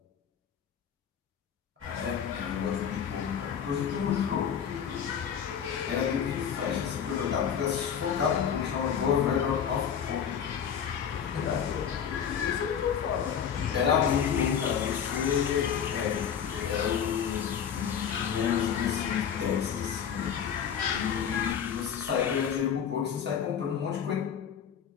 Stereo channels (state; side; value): quieter; right; 8.0 dB